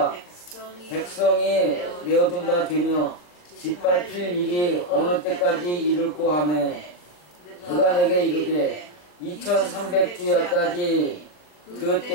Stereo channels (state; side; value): late; right; 39 ms